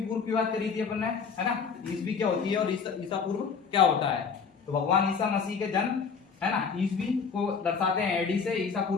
की बात करी थी अपन ने, है ना। ईसवी क्या होती है और ईसा पूर्व क्या होता है। तो भगवान ईसा मसीह के जन्म, है ना, ईसवी को दर्शाते हैं एडी से, ईसा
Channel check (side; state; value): right; quieter; 5.8 dB